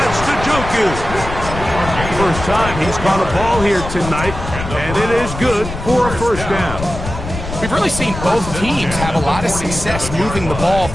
That's Gggggggggg. First time he's caught a ball here tonight, and it is good for a first down. We've really seen both teams have a lot of success moving the ball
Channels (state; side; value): noise; left; rumble, 8 dB below the sound